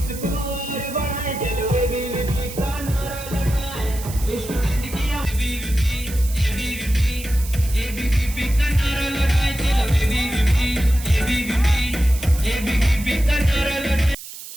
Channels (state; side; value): noise; right; hiss, 13 dB below the sound